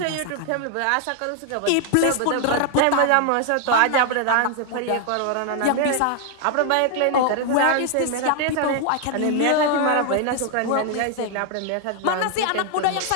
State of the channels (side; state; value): both; different; correlation 0.00